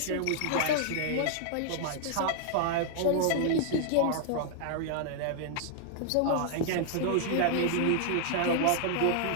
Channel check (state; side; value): different; both; correlation 0.00